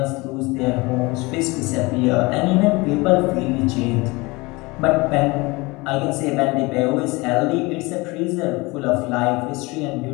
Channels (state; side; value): quieter; right; 24.0 dB